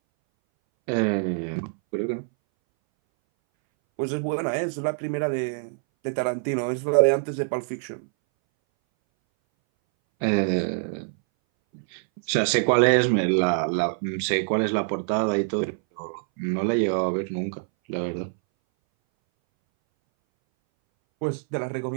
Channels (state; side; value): silent; left; 60 dB below the other